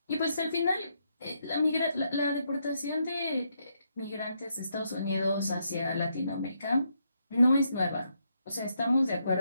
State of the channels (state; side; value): inverted; both; correlation -0.78